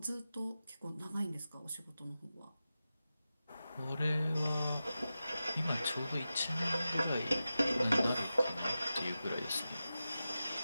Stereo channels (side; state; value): both; inverted; correlation -0.93